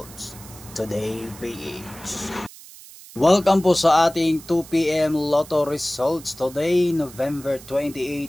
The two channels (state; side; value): noise; right; hiss, 19 dB below the sound